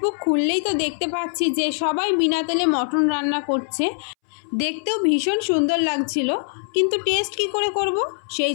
খুললেই তো দেখতে পাচ্ছি যে সবাই বিনা তেলে মটন রান্না করছে। দেখতেও ভীষণ সুন্দর লাগছিল, কিন্তু টেস্ট কি করে করব? সেই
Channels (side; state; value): right; silent; 64 dB below the other